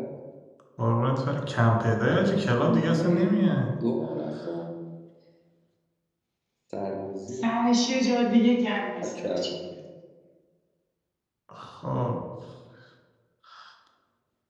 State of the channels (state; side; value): identical; both; correlation 1.00